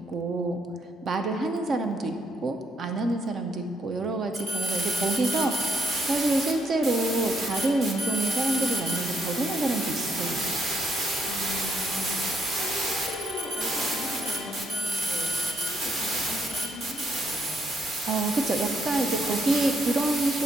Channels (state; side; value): normal; both; correlation 0.74